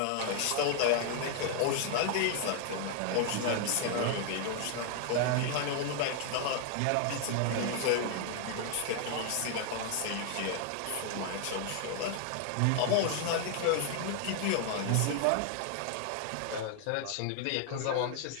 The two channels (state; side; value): different; both; correlation 0.00